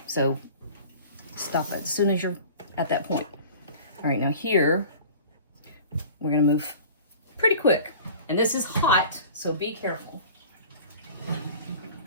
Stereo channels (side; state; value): both; inverted; correlation -0.42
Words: So stop it as soon as you're at that point. All right, now here, we're gonna move pretty quick. And this is hot, so be careful.